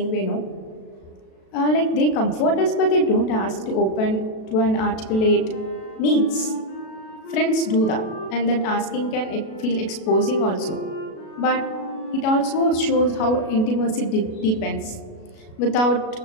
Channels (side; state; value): right; late; 37 ms